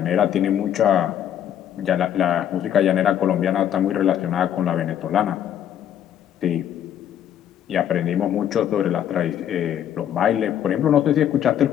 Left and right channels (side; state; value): right; quieter; 10.2 dB